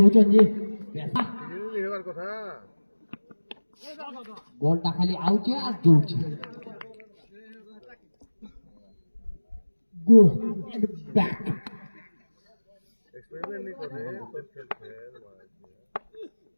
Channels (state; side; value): inverted; both; correlation -1.00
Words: चन जी কথা বলটা খালি আউছে আর জুড়ছে গো ব্যাক এক্সপেরিমেন্ট नहीं कर रहे तो खेल खेल